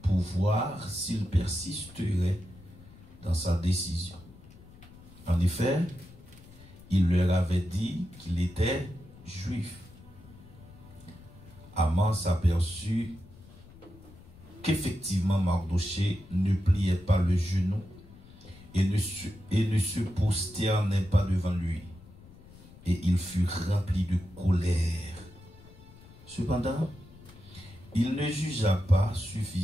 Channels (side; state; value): left; noise; rumble, 21 dB below the sound